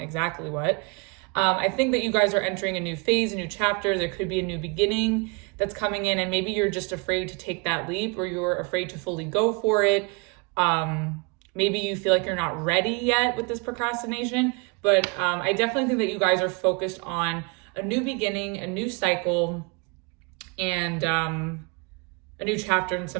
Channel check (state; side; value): quieter; left; 31.7 dB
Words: exactly what. I think that you guys are entering a new phase, a new chapter. There could be a new beginning that's coming in, and maybe you're just afraid to take that leap, or you're afraid to fully go for it. Maybe you feel like you're not ready yet with this procrastination, but I definitely think that you guys are focused on a new beginning, a new cycle, and a new chapter in